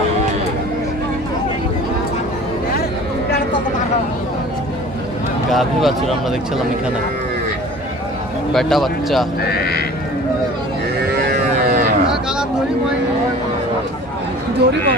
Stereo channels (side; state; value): both; normal; correlation 0.44